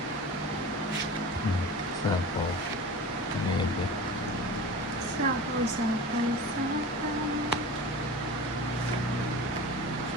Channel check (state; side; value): normal; both; correlation 0.34